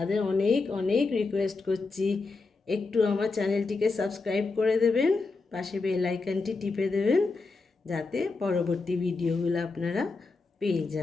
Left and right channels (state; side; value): quieter; right; 3.9 dB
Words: অনেক অনেক রিকোয়েস্ট করছি, একটু আমার চ্যানেলটিকে সাবস্ক্রাইব করে দেবেন, পাশে বেল আইকনটি টিপে দেবেন, যাতে পরবর্তী ভিডিওগুলো আপনারা পেয়ে